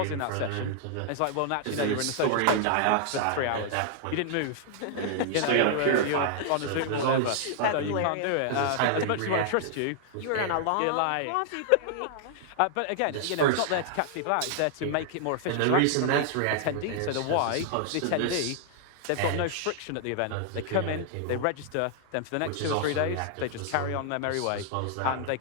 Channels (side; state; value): both; different; correlation 0.00